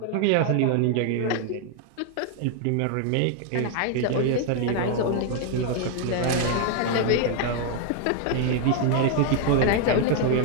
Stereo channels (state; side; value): different; both; correlation 0.00